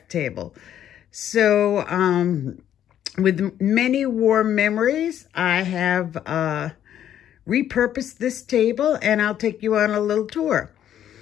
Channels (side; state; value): right; quieter; 10.6 dB